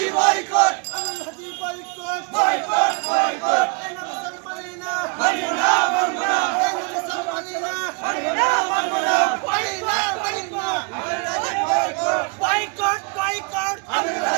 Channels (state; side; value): quieter; left; 34.3 dB